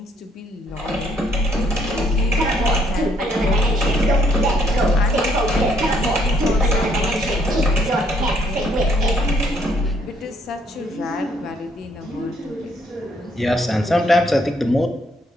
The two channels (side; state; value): both; normal; correlation 0.68